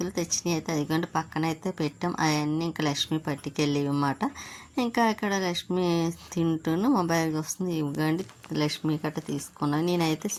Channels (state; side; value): identical; both; correlation 1.00